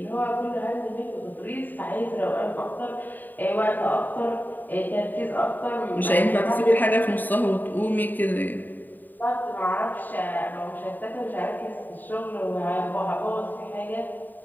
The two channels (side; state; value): right; late; 0.089 ms